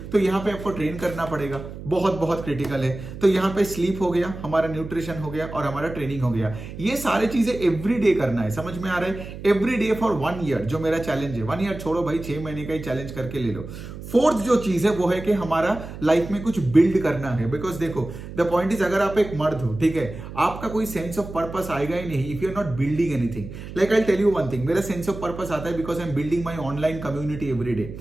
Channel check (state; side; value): noise; right; hum, 11 dB below the sound